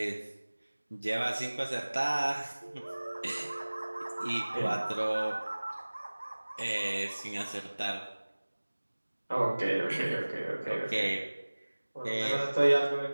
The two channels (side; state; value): both; inverted; correlation -1.00